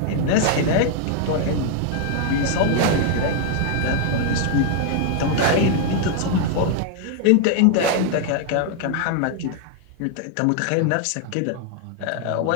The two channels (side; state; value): both; different; correlation 0.00